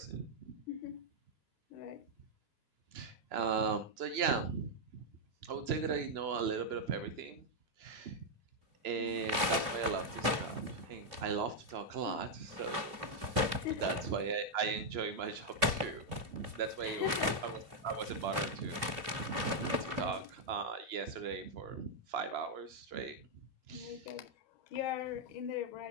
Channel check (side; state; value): left; late; 2.9 ms